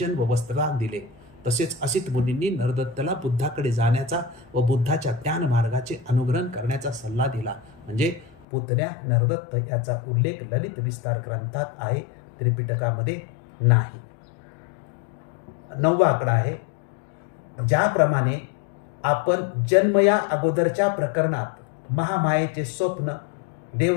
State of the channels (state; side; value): drops out; right; at 8.5 s